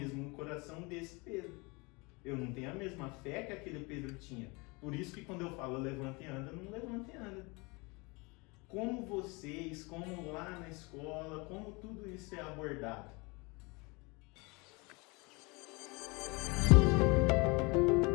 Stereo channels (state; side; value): quieter; right; 27.3 dB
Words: coração desse Pedro. Eu não tenho a mesma fé que aquele Pedro tinha. Por isso que quando eu falo levanta e anda, não levanta e anda. Como vocês, como lá na escola, como tudo isso é abordado?